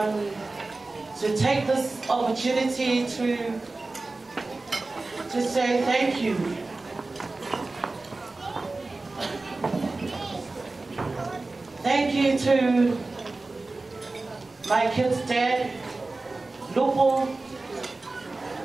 take this opportunity to say thank you. Thank you to my kid's dad, Lupo,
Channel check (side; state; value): left; quieter; 3.3 dB